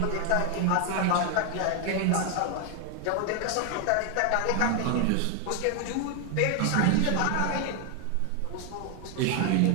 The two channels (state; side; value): different; both; correlation 0.00